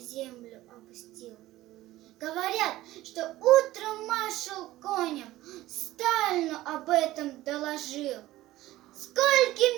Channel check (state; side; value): quieter; left; 16.2 dB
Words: опустил. Говорят, что утром маршал Конев Сталину об этом доложил.